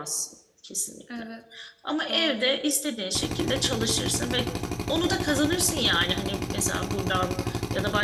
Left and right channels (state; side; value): identical; both; correlation 1.00